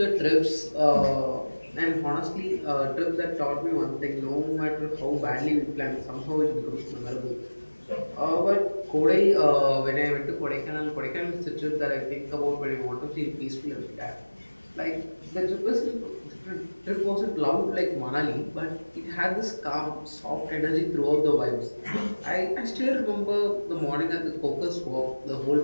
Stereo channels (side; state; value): both; inverted; correlation -1.00